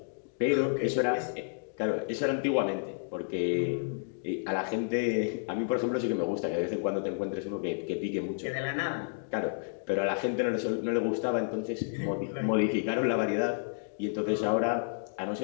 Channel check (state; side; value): silent; right; digital silence